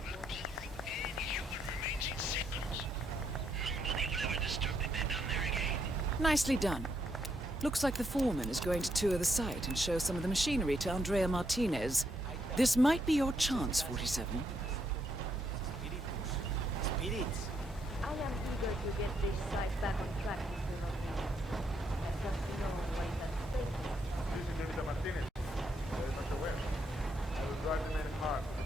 up any human remains in seconds. Nobody will ever disturb the bed down there again. Nicely done. Looks like the foreman is going to tour the site and show some of the machinery to Andrea Martinez. This might be your chance, 47. Spirits. I am eager to get this site back on track, Mr. Rodriguez. I trust you know what is at stake. This is Señorita Martinez. Very much aware. I will drive the men hard.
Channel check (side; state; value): both; normal; correlation 0.76